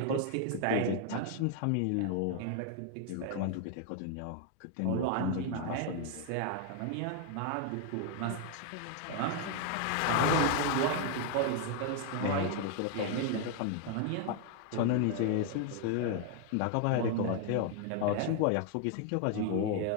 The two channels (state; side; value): different; both; correlation 0.00